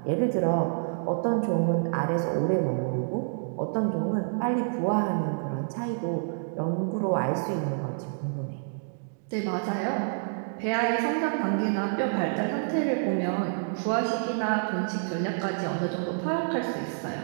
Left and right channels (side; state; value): left; silent; digital silence